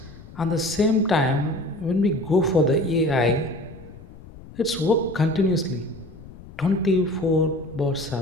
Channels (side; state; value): left; noise; rumble, 18 dB below the sound